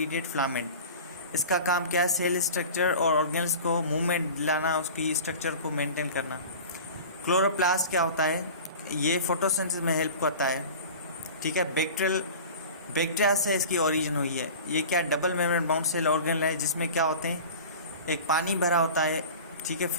फिलामेंट। इसका काम क्या है, सेल स्ट्रक्चर और ऑर्गेन्स को मूवमेंट दिलाना, उसकी स्ट्रक्चर को मेंटेन करना। क्लोरोप्लास्ट क्या होता है, ये फोटोसिंथेसिस में हेल्प करता है, ठीक है। बैक्टीरिया से इसकी ओरिजिन हुई है। ये क्या, double membrane bound cell organelle है, जिसमें क्या होते हैं, एक पानी भरा होता है, ठीक है,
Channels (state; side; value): inverted; both; correlation -0.37